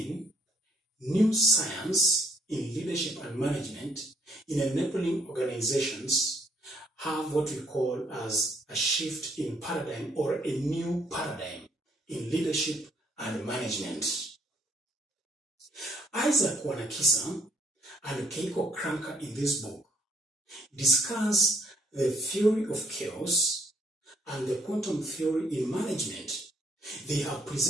new science in leadership and management in enabling organizations have what we call as a shift in paradigm or a new paradigm in leadership and management. Isaac Wanakisa and Keiko Kranker in this book discuss the theory of chaos and the quantum theory in management. They have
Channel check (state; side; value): normal; both; correlation 0.67